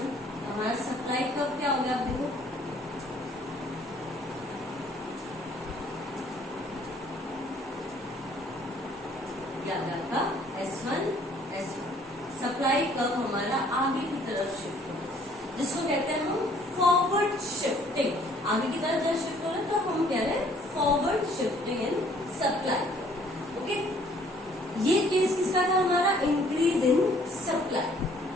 हमारा सप्लाई कर्व क्या हो गया? आप देखो का S1 S1 सप्लाई कर्व हमारा आगे की तरफ शिफ्ट हो, जिसको कहते हैं हम फॉरवर्ड शिफ्टिंग। आगे की तरफ जब शिफ्ट हो रहा है तो हम कह रहे हैं forward shifting in supply, okay. ये केस किसका था? हमारा इंक्रीज इन सप्लाई।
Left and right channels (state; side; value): normal; both; correlation 0.60